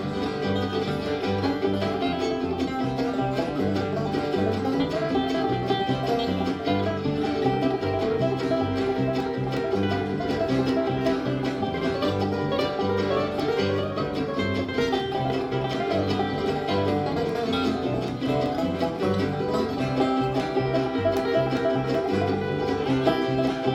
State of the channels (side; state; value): both; identical; correlation 1.00